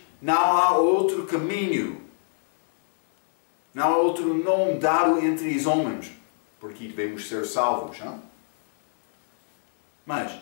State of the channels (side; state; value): right; silent; digital silence